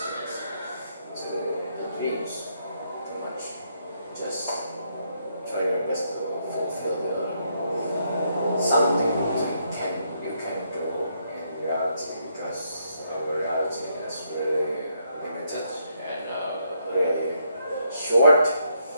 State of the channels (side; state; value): both; inverted; correlation -0.76